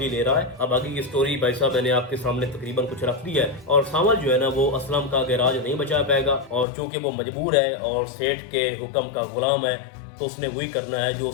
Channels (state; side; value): drops out; right; at 6.7 s